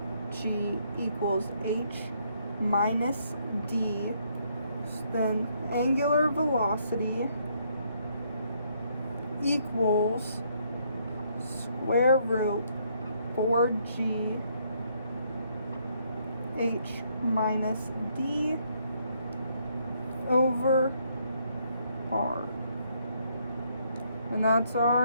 equals h minus d. So then angular velocity equals square root 4g h minus d over r. And that's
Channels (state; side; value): inverted; both; correlation -0.71